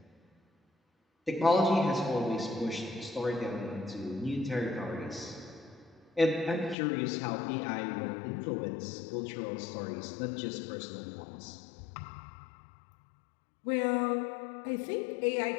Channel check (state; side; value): drops out; right; at 6.8 s